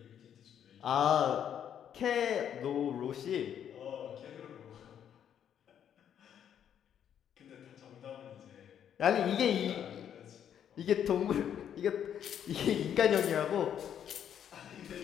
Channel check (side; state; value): right; quieter; 9.2 dB